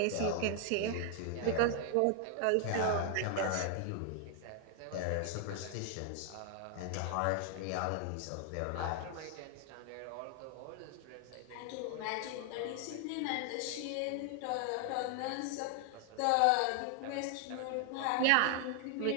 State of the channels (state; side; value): different; both; correlation 0.00